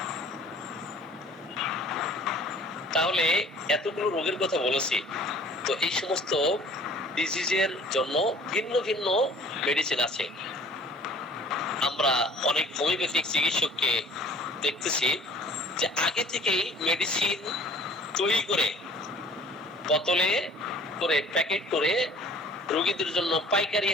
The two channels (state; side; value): normal; both; correlation 0.51